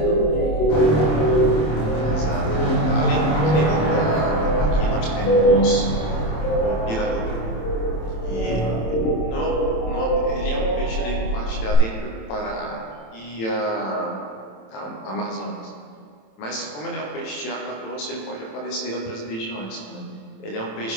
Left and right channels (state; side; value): late; right; 27 ms